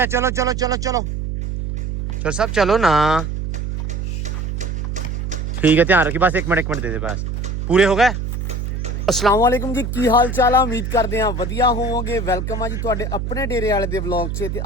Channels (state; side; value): noise; right; hum, 3 dB below the sound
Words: ਚਲੋ ਚਲੋ ਚਲੋ ਚਲੋ ਚਲ ਸਭ ਚਲੋ ਨਾ ठीक है ध्यान रखिए बस एक मिनट दे दे बस पूरे हो गए अस्सलाम वालेकुम जी की हाल चाल है उम्मीद करते हैं वधिया होवोगे वेलकम है जी तुहाडे अपने डेरे वाले दे व्लॉग च ते